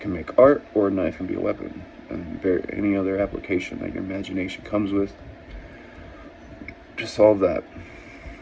make art, or a knife can be a weapon. And any other application that your imagination comes with to solve that.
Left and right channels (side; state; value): both; identical; correlation 1.00